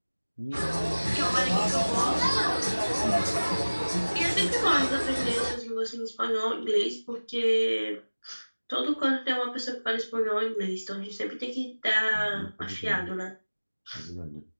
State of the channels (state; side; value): inverted; both; correlation -1.00